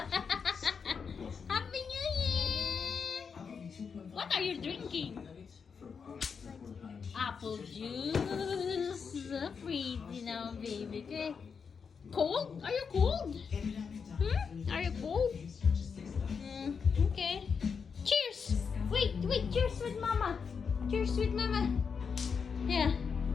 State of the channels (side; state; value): right; quieter; 6.0 dB